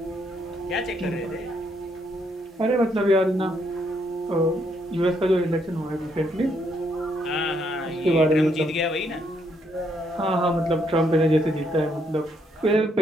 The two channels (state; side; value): normal; both; correlation 0.74